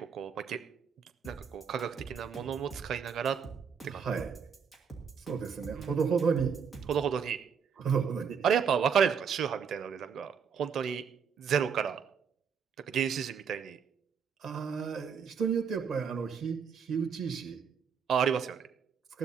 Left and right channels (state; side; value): quieter; left; 6.8 dB